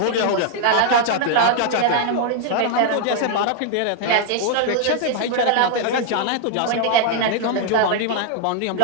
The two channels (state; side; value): different; both; correlation 0.00